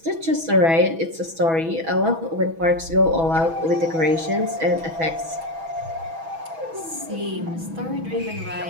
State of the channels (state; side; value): late; left; 6.1 ms